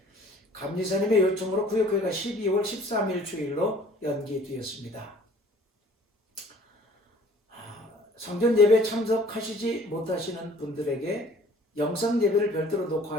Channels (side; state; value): both; normal; correlation 0.52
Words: 감리사님의 요청으로 구역교회가 12월 13일 주일로 연기되었습니다. 성전 예배 참석하시지 못하시는 분들에게 영상 예배를 별도로